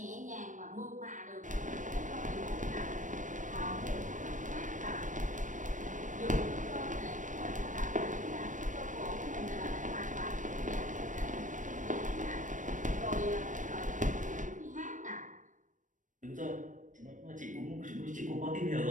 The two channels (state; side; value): late; left; 0.37 ms